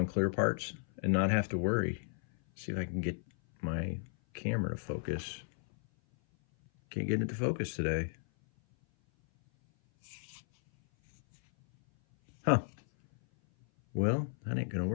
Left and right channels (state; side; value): silent; right; 55 dB below the other